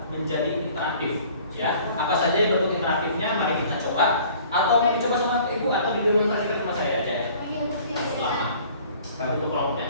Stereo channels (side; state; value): both; inverted; correlation -0.52